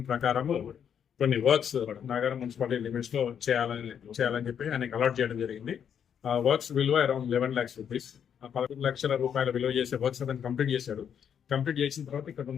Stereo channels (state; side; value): quieter; right; 8.3 dB